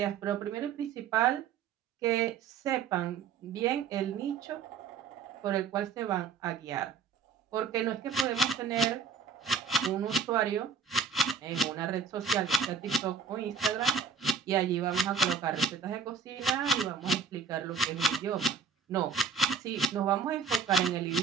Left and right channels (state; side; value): quieter; left; 5.6 dB